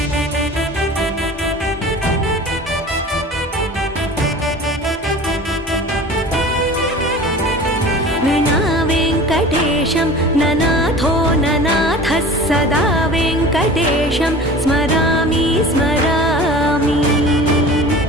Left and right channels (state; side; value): normal; both; correlation 0.39